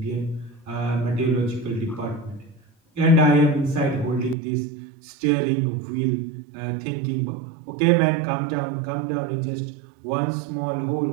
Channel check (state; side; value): drops out; left; at 4.4 s